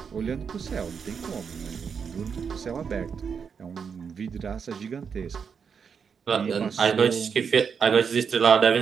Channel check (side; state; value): left; quieter; 6.4 dB